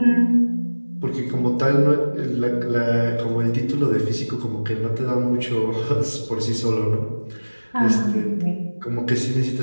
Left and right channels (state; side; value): inverted; both; correlation -1.00